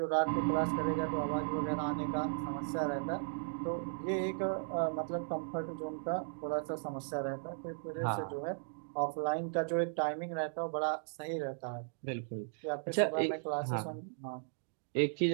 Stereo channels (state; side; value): silent; left; digital silence